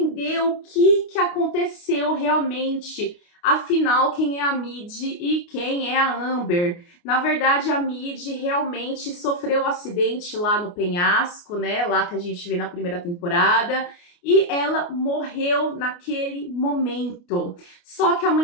o que aconteceu realmente. Afinal, quem é a Mid e quem é a Amber? Na verdade, a Mid realmente sofreu um acidente lá no penhasco, né? Lá que a gente vê na primeira temporada. e ela morreu naquele momento. Só que a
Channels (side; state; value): right; late; 29 ms